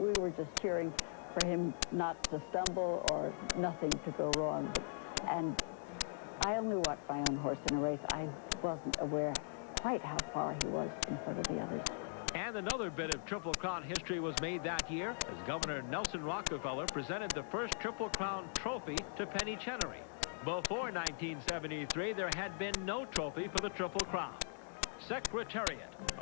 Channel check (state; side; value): silent; right; digital silence